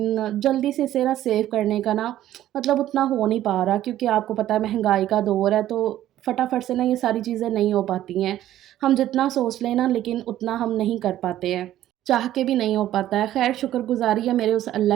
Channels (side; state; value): left; quieter; 13.0 dB